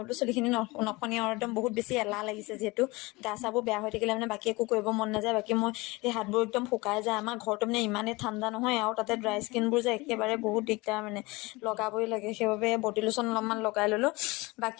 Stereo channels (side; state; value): right; quieter; 23.4 dB